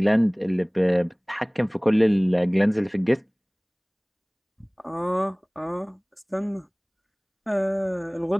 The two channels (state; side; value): identical; both; correlation 1.00